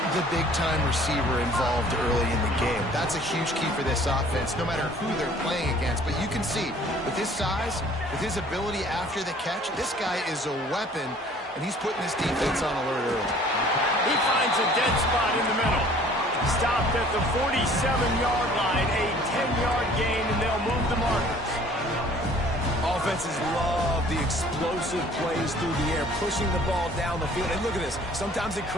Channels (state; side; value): normal; both; correlation 0.53